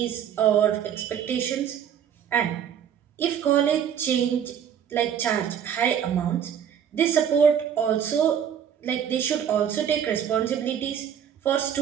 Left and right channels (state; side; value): quieter; left; 8.8 dB